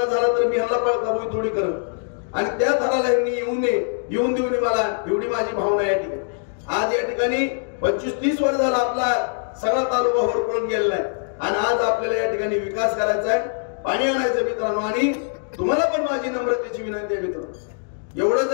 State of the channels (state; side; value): silent; right; digital silence